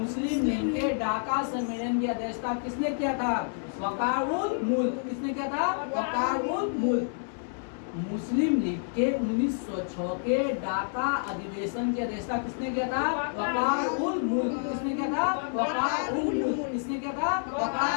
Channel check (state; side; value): silent; right; digital silence